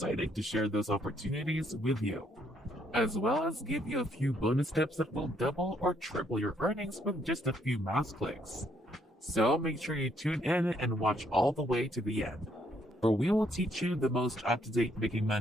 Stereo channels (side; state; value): both; normal; correlation 0.70